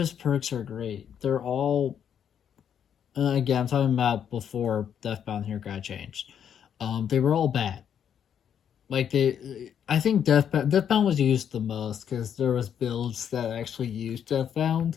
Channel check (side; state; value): right; quieter; 8.6 dB